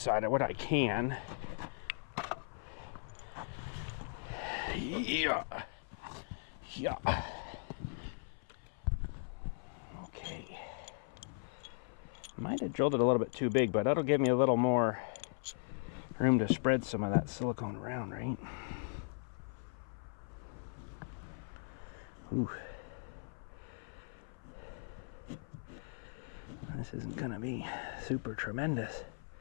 of what I can. Yeah. Yeah. Okay. Might have drilled it a little bit too big, but that'll give me a little more room to spread some of that silicone around, right? Ooh. This isn't gonna be super tremendous,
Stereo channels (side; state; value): right; silent; 52 dB below the other